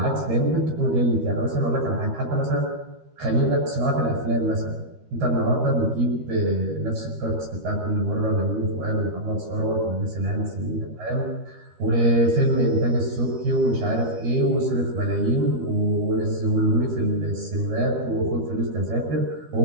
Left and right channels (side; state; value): left; late; 13 ms